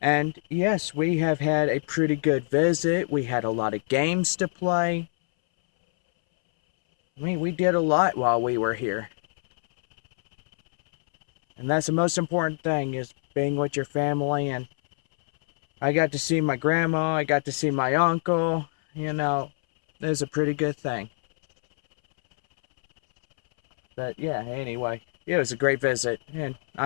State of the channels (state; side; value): silent; right; 62 dB below the other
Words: And yes, we have had a pretty good visit. We had a lot of games to play. I mean, we did a lot while we were here. And that's the most important thing, is being with your family. And I got to see my grandma. I got to see my uncle. You know, it was a pretty good thing. But yeah, anyway, it was a great visit, and